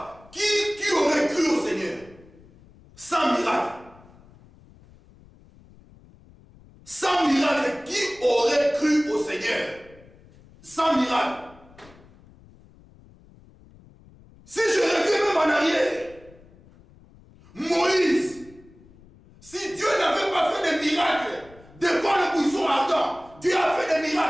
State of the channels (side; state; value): left; noise; rumble, 25 dB below the sound